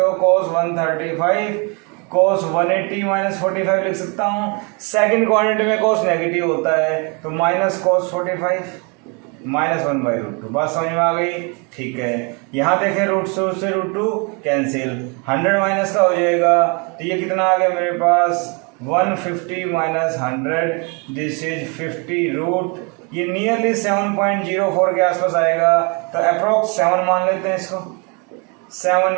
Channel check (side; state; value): left; quieter; 32.7 dB